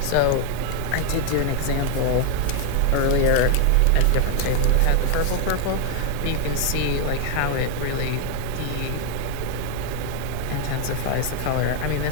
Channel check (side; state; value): both; different; correlation 0.00